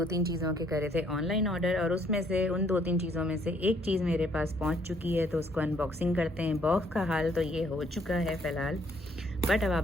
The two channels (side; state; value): both; normal; correlation 0.66